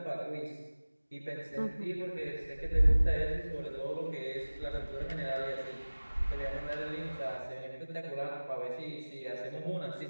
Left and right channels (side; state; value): both; inverted; correlation -1.00